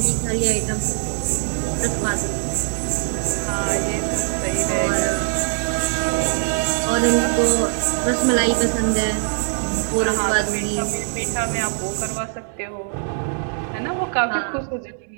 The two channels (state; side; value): silent; left; 64 dB below the other